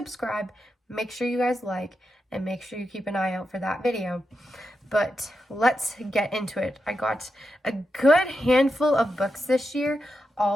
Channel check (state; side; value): normal; both; correlation 0.87